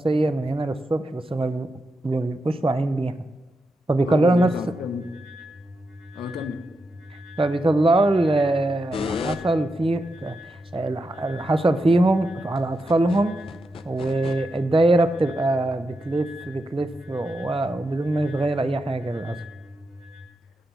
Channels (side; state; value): both; normal; correlation 0.86